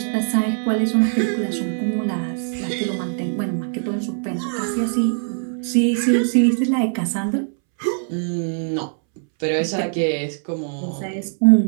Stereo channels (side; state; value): left; silent; 65 dB below the other